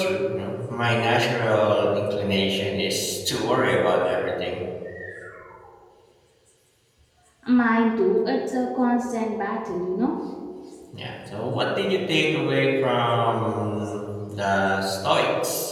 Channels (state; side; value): identical; both; correlation 1.00